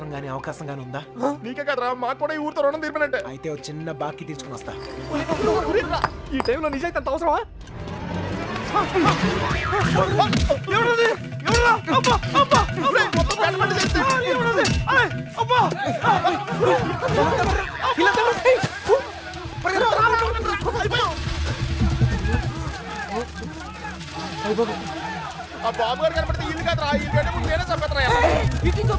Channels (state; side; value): identical; both; correlation 1.00